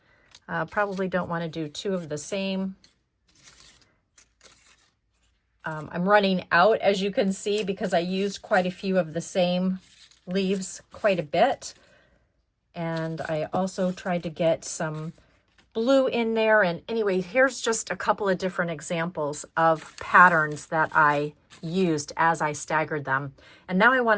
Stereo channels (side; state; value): both; identical; correlation 1.00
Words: Probably don't want to do 2 of the same. I'm running out, as you can see, because I used quite a few of the same leaves quite a bit. And I also tried to get some blue in there. And anyway, here's just a couple of different examples of patterns that I used as I staggered them. And now I